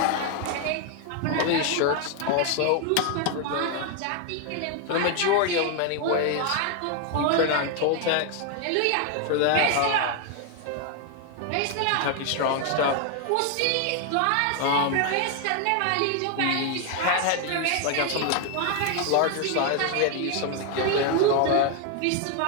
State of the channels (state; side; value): different; both; correlation 0.00